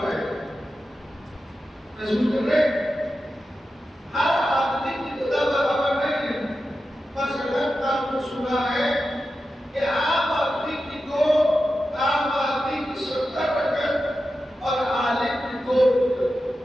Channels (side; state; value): both; normal; correlation 0.91